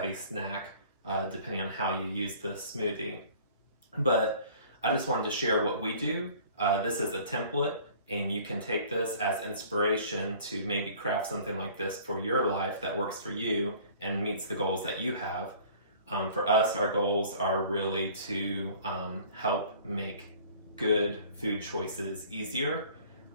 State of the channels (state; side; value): inverted; both; correlation -0.50